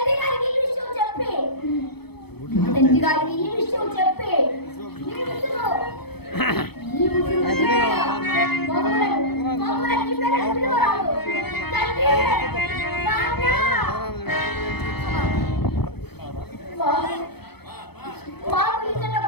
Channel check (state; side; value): late; right; 0.97 ms